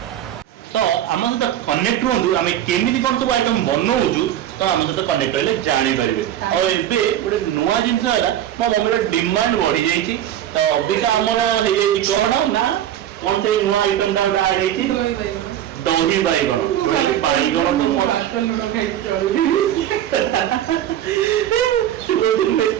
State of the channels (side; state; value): left; quieter; 11.4 dB